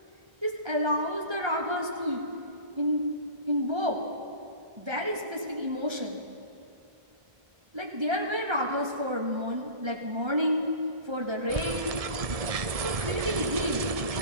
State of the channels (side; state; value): left; late; 1.7 ms